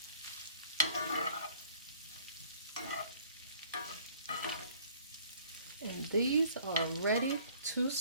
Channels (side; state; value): both; inverted; correlation -0.55